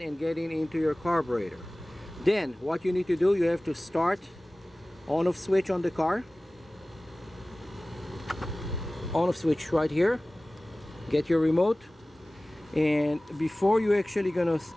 and getting into your carburetor. Then what you need to do, you have to start on-off switch on the car. On-off switch right here. Get your remote. And before you actually gonna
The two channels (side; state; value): both; normal; correlation 0.98